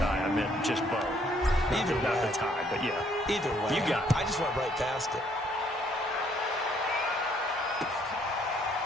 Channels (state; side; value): normal; both; correlation 0.66